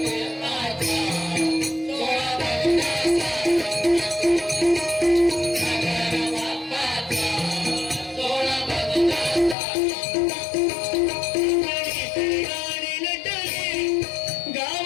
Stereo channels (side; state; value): right; drops out; at 9.6 s